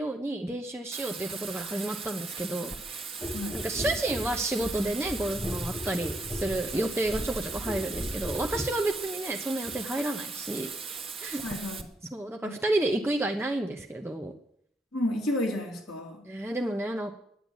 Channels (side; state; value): both; normal; correlation 0.76